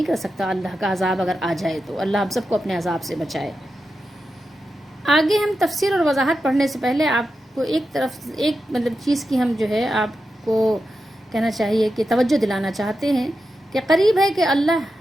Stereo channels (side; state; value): both; normal; correlation 0.89